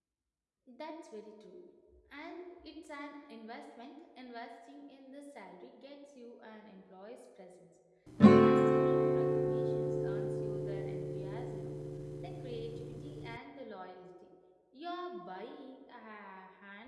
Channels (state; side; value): identical; both; correlation 1.00